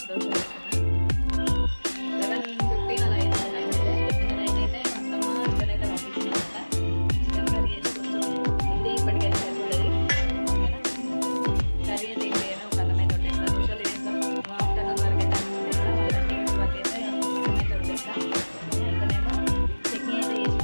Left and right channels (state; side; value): inverted; both; correlation -1.00